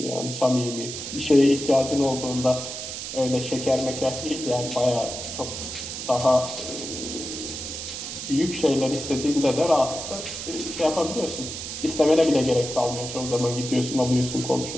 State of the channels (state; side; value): noise; right; hiss, 7 dB below the sound